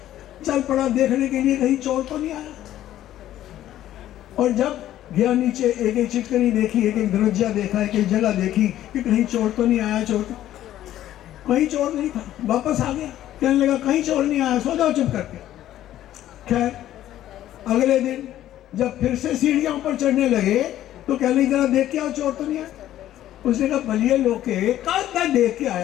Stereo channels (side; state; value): right; quieter; 12.8 dB